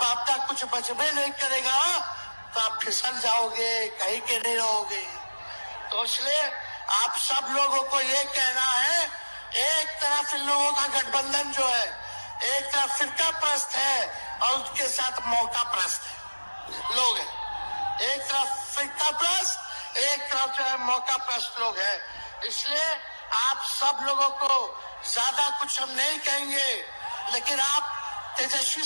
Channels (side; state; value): both; inverted; correlation -1.00